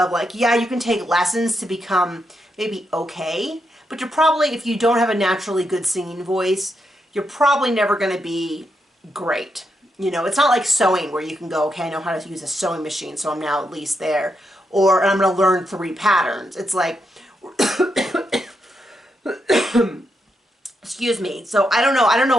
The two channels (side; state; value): both; normal; correlation 0.82